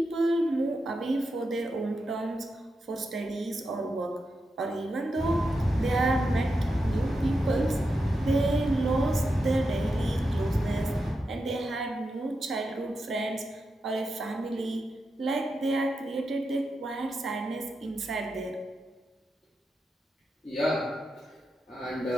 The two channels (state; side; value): normal; both; correlation 0.87